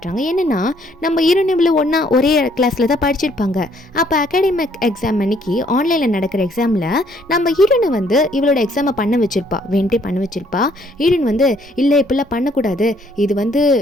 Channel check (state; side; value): normal; both; correlation 0.65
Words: என்னன்னா நம்ம ஹீரோயின் இவ்வளோ ஒன்றா ஒரே கிளாஸில் தான் படிச்சிருப்பாங்க. அப்போ அகாடமிக் எக்ஸாம் அன்னைக்கு ஆன்லைனில் நடக்கிற எக்ஸாமில் நம்ம ஹீரோனை வந்து இவளோட எக்ஸாமை பண்ண வச்சிருப்பா, வேண்டே பண்ண வச்சிருப்பா. ஹீரோயின் வந்து இல்லை இப்படிலாம் பண்ணக்கூடாது, இது வந்து